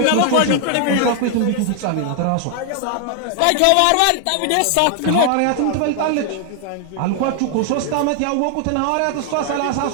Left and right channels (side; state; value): both; different; correlation 0.00